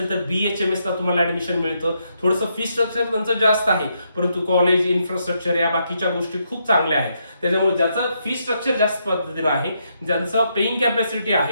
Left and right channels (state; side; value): inverted; both; correlation -0.78